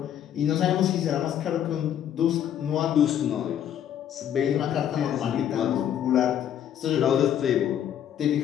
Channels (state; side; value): quieter; right; 10.0 dB